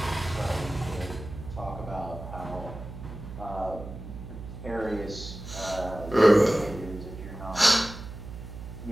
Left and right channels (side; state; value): right; noise; hum, 11 dB below the sound